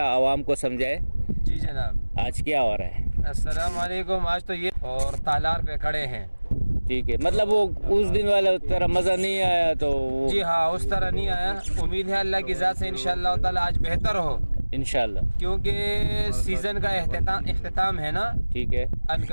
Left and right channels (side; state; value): both; inverted; correlation -1.00